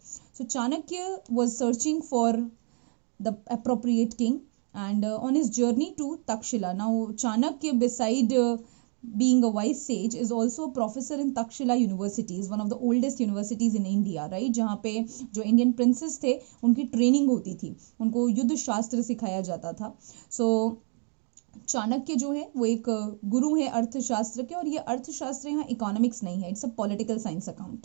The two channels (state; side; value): quieter; left; 38.1 dB